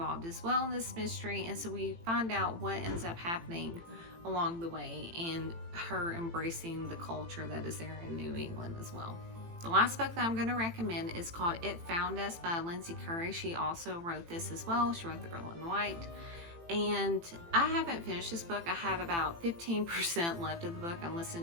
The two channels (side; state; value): left; late; 18 ms